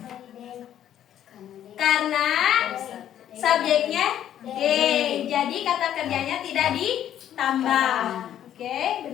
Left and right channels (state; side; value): quieter; right; 10.8 dB